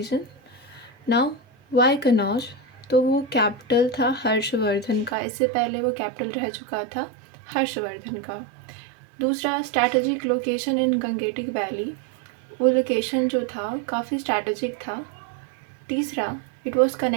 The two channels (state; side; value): drops out; left; at 5.2 s